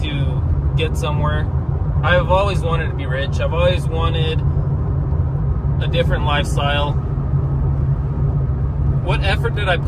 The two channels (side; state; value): both; identical; correlation 1.00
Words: get somewhere. I've always wanted to be rich. I've always wanted a different lifestyle. What effort did I